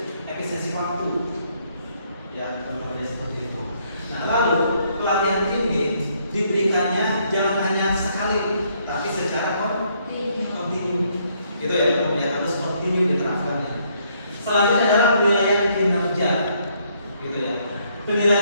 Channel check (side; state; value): both; inverted; correlation -0.70